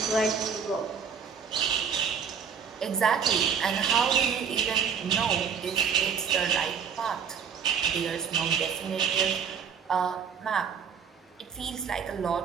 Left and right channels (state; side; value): quieter; left; 6.8 dB